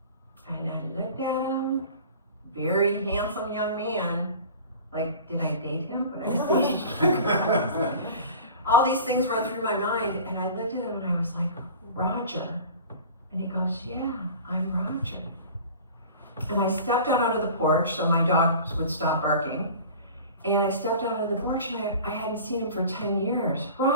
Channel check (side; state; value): both; inverted; correlation -0.40